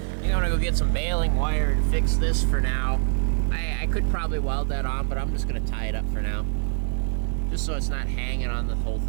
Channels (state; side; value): silent; left; digital silence